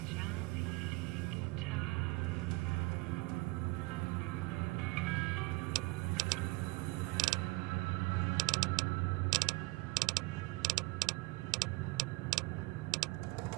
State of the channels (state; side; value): quieter; left; 22.8 dB